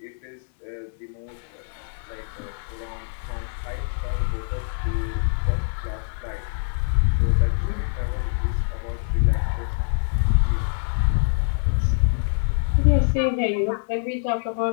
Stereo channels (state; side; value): silent; right; 62 dB below the other